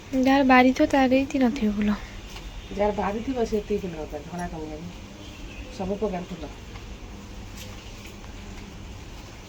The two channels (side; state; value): both; identical; correlation 1.00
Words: ଯାହାର ବାରି ଥିବ ତାର ଏଇଠି ନଥିବ ଫୁଲ ଯାହାର ବାରି ଥିବ ସେ ଏତିକି ଫୁଲ ଦରକାର ଧଳା କନିଆରୀ ସବୁ ପ୍ରକାର ଫୁଲ